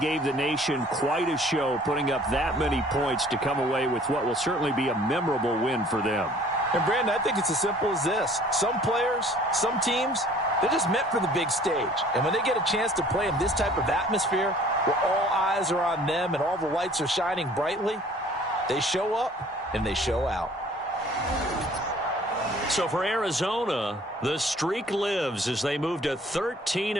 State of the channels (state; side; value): normal; both; correlation 0.53